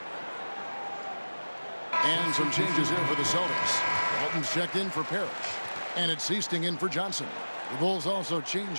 And some changes here for the Celtics. Walton's checked in for Parrish. And it's Seasting in for Johnson. The Bulls also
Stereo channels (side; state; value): both; inverted; correlation -1.00